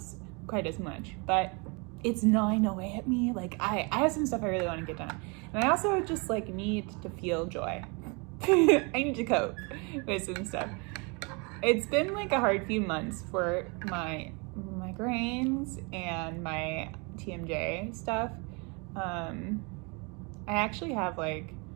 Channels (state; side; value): quieter; left; 30.9 dB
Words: quite as much, but it's gnawing away at me. Like I have some stuff I really want to get done. And I also just like need to feel joy. I need to cope with some stuff. It's been like a hard few months for my migraines and my TMJ stuff. I actually have like